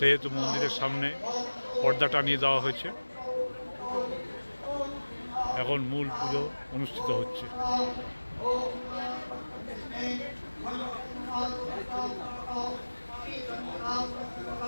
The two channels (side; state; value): both; inverted; correlation -1.00